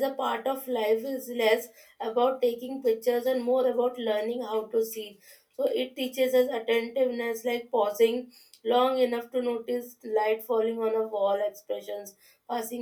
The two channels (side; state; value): both; identical; correlation 1.00